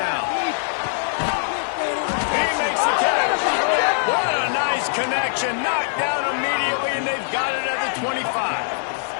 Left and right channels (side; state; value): right; silent; 64 dB below the other